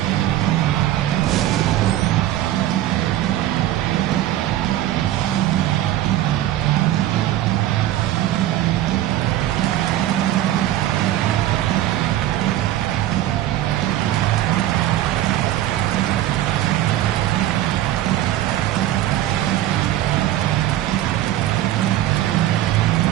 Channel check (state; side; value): quieter; left; 13.5 dB